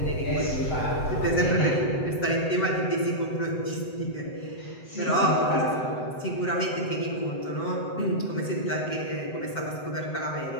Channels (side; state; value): right; late; 7.9 ms